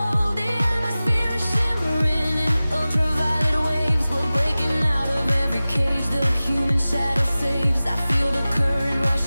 The atmosphere is shimmering in ultraviolet waves. We're breaking out of every cage the human shadow saves. I feel the current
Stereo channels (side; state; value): both; inverted; correlation -0.97